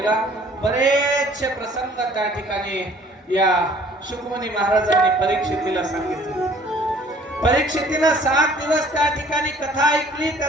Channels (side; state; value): both; normal; correlation 0.55